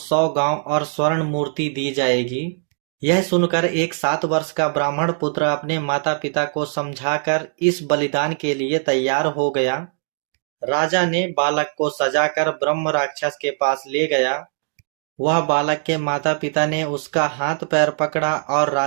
गांव और स्वर्ण मूर्ति दी जाएगी। यह सुनकर एक 7 वर्ष का ब्राह्मण पुत्र अपने माता पिता को समझाकर इस बलिदान के लिए तैयार हो गया। राजा ने बालक को सजाकर ब्रह्म राक्षस के पास ले गया। वह बालक के माता पिता ने उसका हाथ पैर पकड़ा और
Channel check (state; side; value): silent; left; digital silence